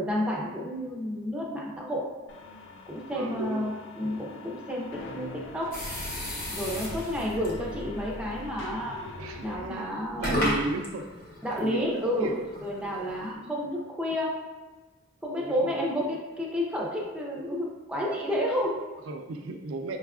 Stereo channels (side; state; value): both; normal; correlation 0.46